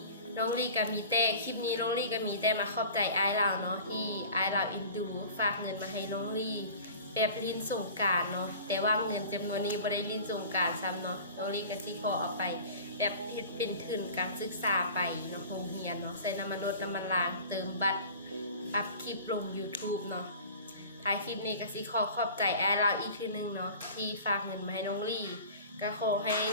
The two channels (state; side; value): inverted; both; correlation -0.40